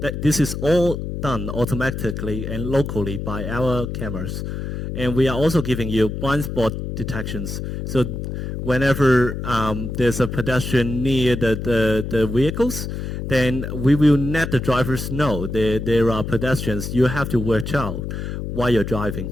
This is all done automatically and locally by our cameras. And we are also giving you blind spot detections. So whenever there's a pedestrian near the vehicles, then we will let the drivers know there are pedestrians you have to watch out while you're driving.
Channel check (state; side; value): noise; left; hum, 5 dB below the sound